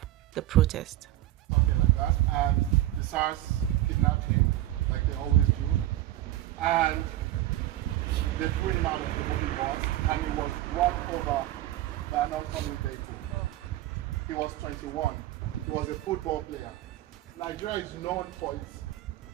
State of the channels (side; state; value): left; quieter; 14.8 dB